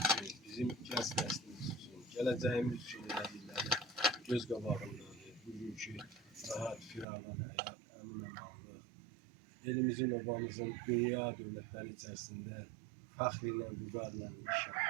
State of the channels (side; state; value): left; drops out; at 7.1 s